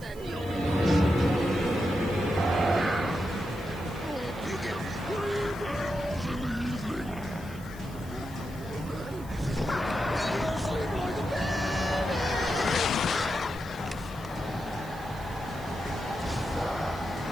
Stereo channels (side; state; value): right; noise; hiss, 21 dB below the sound